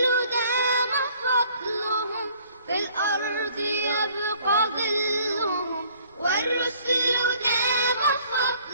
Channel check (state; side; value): inverted; both; correlation -0.58